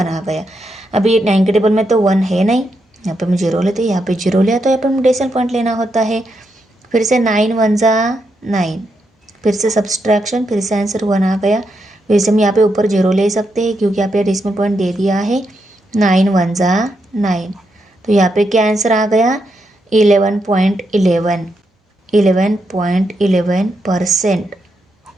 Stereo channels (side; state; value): both; normal; correlation 0.82